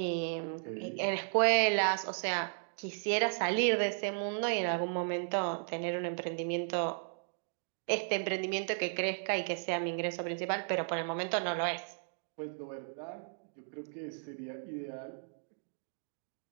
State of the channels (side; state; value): left; silent; digital silence